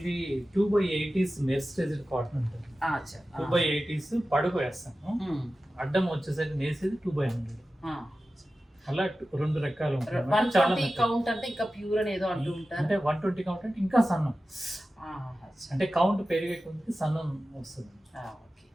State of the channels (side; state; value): both; normal; correlation 0.94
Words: 2/80s మెర్సరైజ్డ్ కాటన్ ఉంటుంది. 2/80s పడుగు వేస్తాను, అడ్డం వచ్చేసరికి నేసేది 2/100. అలా రెండు రకాలు ఉంటాయి. 120 కౌంట్ అంటే ఇంకా ప్యూర్ అని ఏదో అంటూ ఉంటారు. అంటే 120 కౌంట్ అంటే ఇంకా సన్నం, అంటే కౌంట్ పెరిగే కొద్ది సన్నం వస్తుంది,